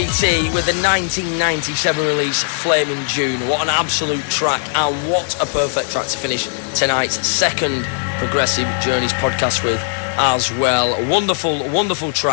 with the 1997 release Flaming June. What an absolute track, and what a perfect track to finish tonight's second Progressive Journeys podcast with as well. Wonderful, wonderful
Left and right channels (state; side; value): silent; right; digital silence